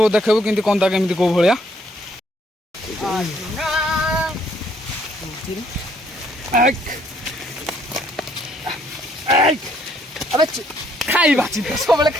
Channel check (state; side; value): normal; both; correlation 0.67